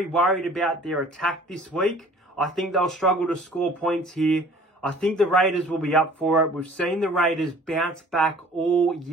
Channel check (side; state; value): both; normal; correlation 0.50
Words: worried about their attack this week. I think they'll struggle to score points here. I think the Raiders will be up for it. We've seen the Raiders bounce back all